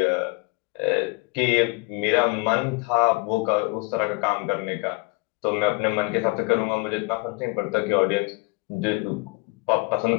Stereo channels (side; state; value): right; quieter; 27.0 dB